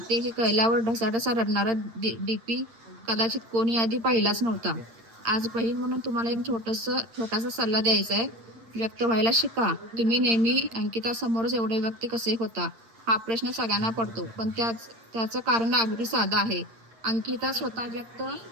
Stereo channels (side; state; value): left; late; 8.8 ms